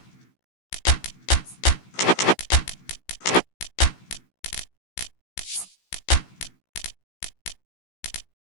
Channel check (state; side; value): late; right; 16 ms